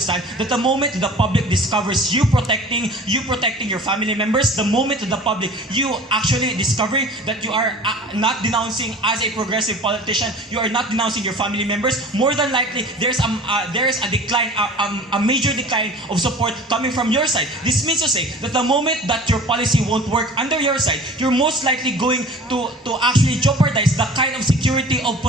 that the moment the public discovers you protecting your family members, the moment the public you actually discovering that you are not denouncing as a progressive politician, you are not denouncing your family members, more than likely there's a decline, a major decline of support coming from your side. This means to say that the moment that your policy won't work under your side, you're most likely going to actually jeopardize the kind of security of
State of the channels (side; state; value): both; normal; correlation 0.42